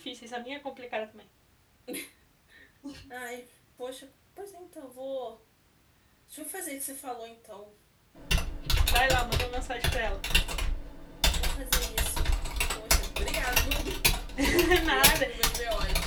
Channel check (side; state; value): both; identical; correlation 1.00